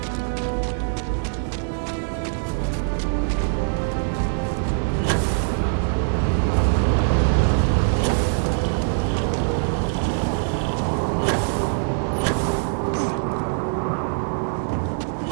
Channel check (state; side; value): silent; left; digital silence